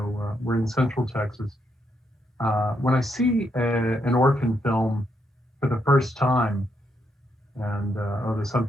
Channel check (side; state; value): both; normal; correlation 0.78